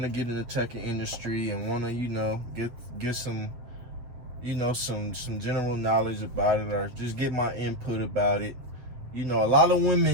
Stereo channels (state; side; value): late; left; 8.4 ms